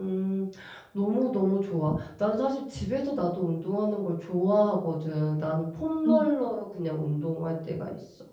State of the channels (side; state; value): both; identical; correlation 1.00